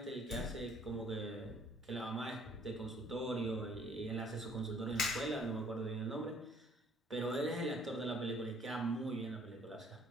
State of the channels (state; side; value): normal; both; correlation 0.60